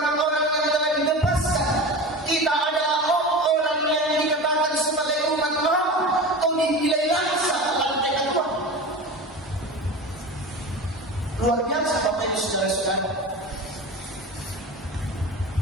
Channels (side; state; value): both; normal; correlation 0.31